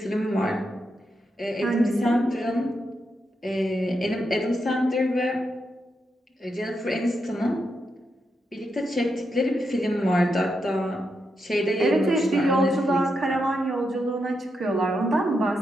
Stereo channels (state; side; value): normal; both; correlation 0.84